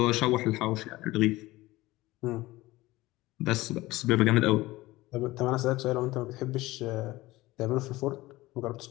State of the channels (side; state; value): right; quieter; 18.9 dB